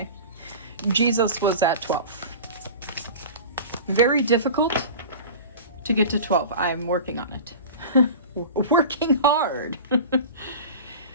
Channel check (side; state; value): both; inverted; correlation -0.34